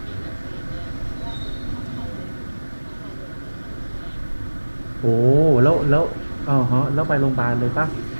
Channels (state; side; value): inverted; both; correlation -1.00